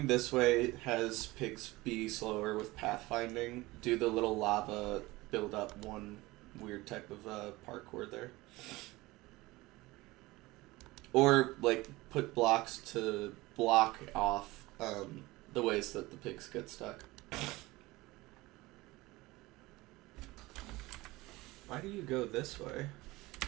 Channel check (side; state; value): left; quieter; 20.5 dB